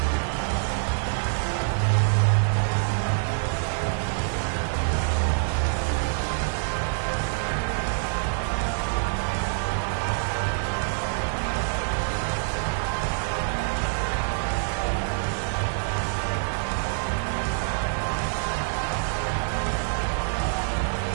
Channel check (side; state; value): left; silent; digital silence